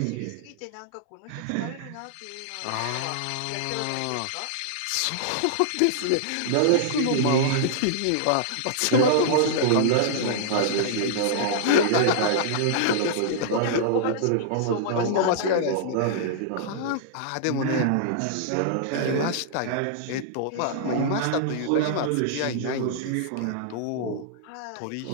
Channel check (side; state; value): both; different; correlation -0.01